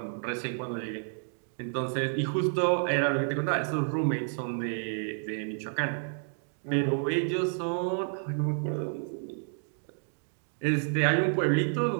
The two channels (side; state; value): left; silent; digital silence